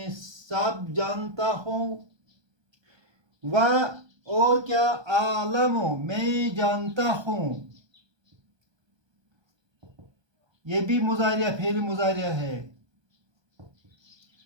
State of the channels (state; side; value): late; left; 1.2 ms